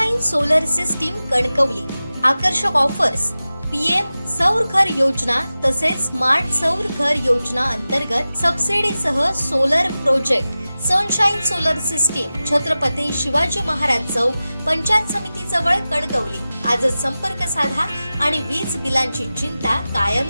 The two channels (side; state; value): both; inverted; correlation -0.95